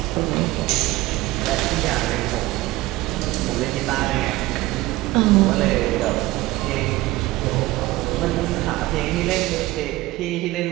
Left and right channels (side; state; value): left; quieter; 18.5 dB